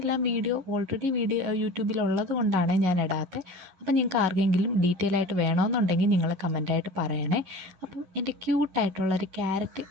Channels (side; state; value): left; late; 11 ms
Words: വീഡിയോ ഓൾറെഡി യൂട്യൂബിലുള്ളത് കൊണ്ടാണ് ഞാൻ ഇടാത്തത്. അപ്പം നിങ്ങൾക്ക് ആർക്കെങ്കിലും ഡീറ്റെയിൽ ആയിട്ട് വേണമെന്നുണ്ടെങ്കിൽ നിങ്ങൾ കമൻറ്റായിട്ട് പറയണേ. അപ്പം എൻ്റെ ക്യൂട്ടായിട്ടുള്ളൊരു ക്യാരറ്റ്